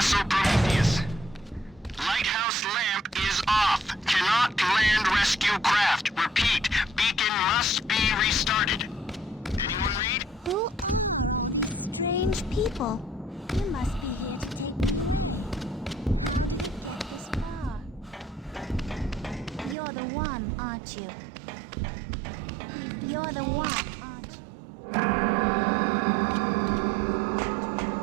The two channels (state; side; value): drops out; left; at 19.8 s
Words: Prometheus. Lighthouse lamp is off. Cannot land rescue craft. Repeat, beacon must be restarted. Anyone read? Who are strange people? You must be here to take me this far. You're the one, aren't you? You're the one, aren't you?